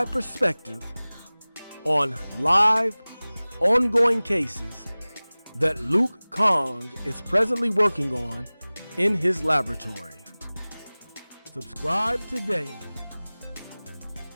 perspective on live, ongoing cases that Luke Kahng is presently working on in his laboratory. Subscribe today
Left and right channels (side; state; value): both; inverted; correlation -0.99